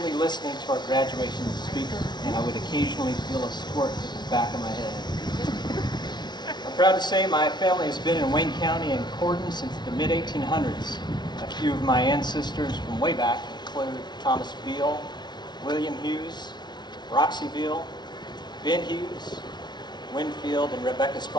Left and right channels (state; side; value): late; right; 0.20 ms